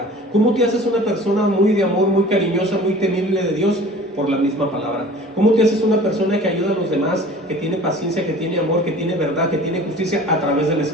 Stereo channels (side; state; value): both; normal; correlation 0.44